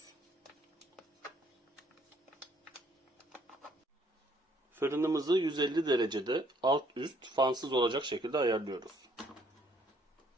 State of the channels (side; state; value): both; normal; correlation 0.65